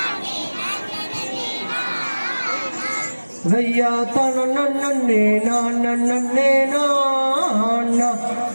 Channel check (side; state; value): both; inverted; correlation -1.00